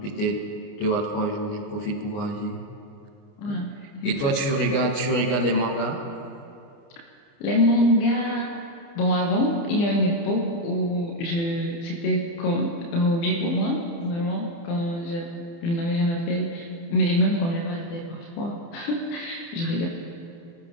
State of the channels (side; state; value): right; late; 30 ms